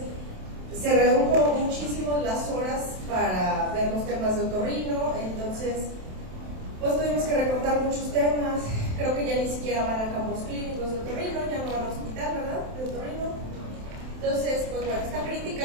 se redujo muchísimo las horas para ver los temas de otorrino, entonces pues tuvimos que recortar muchos temas. Creo que ya ni siquiera van a campos clínicos de otorrino, ya no van a hospital, ¿verdad? De otorrino. Entonces, pues bueno, está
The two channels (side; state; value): left; late; 27 ms